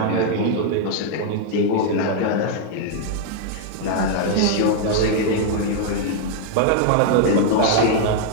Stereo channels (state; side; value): different; both; correlation 0.00